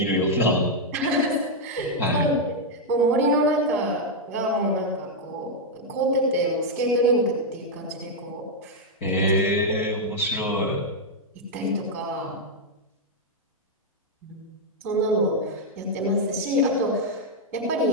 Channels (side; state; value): both; normal; correlation -0.02